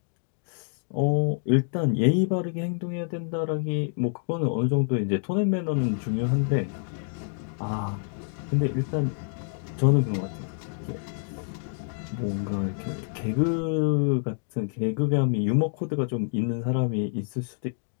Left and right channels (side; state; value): right; silent; 60 dB below the other